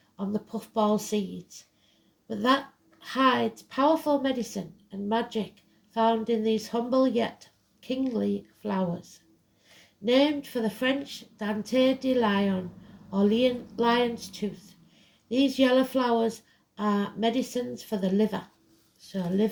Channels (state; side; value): identical; both; correlation 1.00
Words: on the puffball seeds. But that hides powerful medicine and magic found in these humble yet kingly flowers. Named for the French Dente de Lion, or lion's tooth, these yellow flowers are medicines for the liver, so